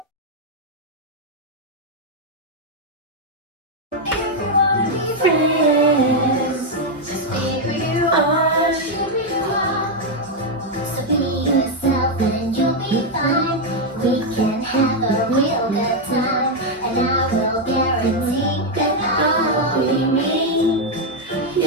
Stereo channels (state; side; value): normal; both; correlation 0.02